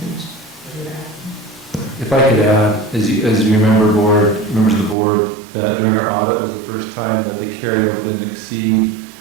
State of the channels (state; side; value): drops out; left; at 5.0 s